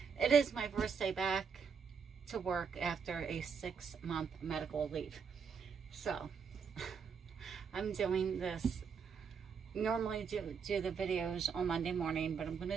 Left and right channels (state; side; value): quieter; left; 6.3 dB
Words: It is my first day back to work after a 6-month medical leave. So, I'm doing this, normally do the videos on Monday morning, but I'm going